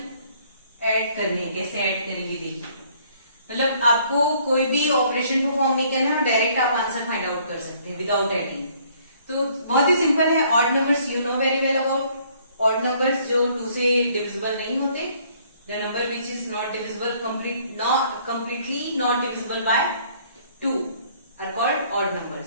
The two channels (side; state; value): both; inverted; correlation -0.62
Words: add करने हैं. कैसे add करेंगे देखिए. मतलब आपको कोई भी ऑपरेशन परफॉर्म नहीं करना है और डायरेक्ट आप आंसर फाइंड आउट कर सकते हैं विदाउट एडिंग. तो बहुत ही सिंपल है. Odd numbers you know very well about. Odd numbers जो 2 से डिविजिबल नहीं होते, the number which is not divisible completely not divisible by 2 are called odd